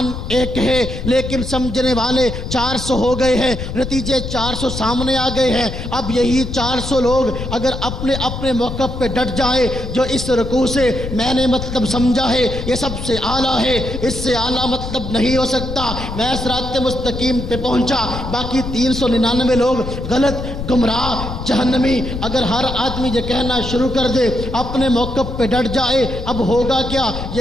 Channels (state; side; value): noise; left; rumble, 6 dB below the sound